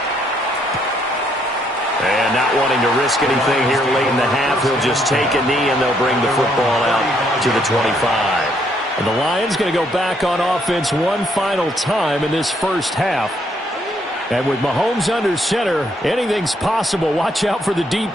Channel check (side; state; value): both; normal; correlation 0.71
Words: And not wanting to risk anything here late in the half, he'll just take a knee and they'll bring the football out to the 25. And the Lions going to go back on offense one final time in this first half. And with Mahomes under center, anything's possible. Watch out for the deep